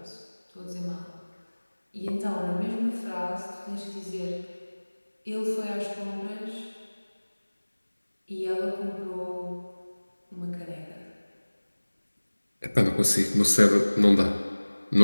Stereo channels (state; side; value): inverted; both; correlation -1.00